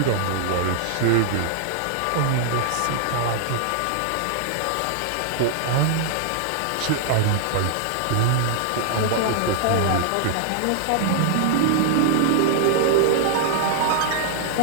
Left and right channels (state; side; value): different; both; correlation -0.01